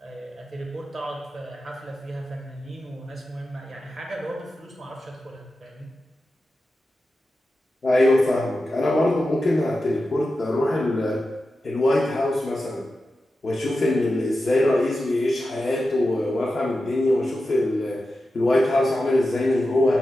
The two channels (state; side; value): normal; both; correlation 0.92